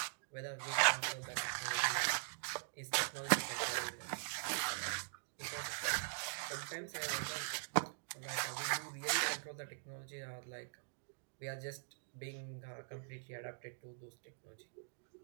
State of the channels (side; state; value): left; silent; digital silence